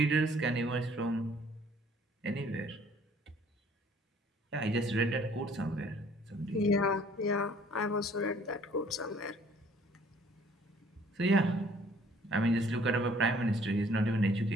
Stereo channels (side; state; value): both; normal; correlation 0.58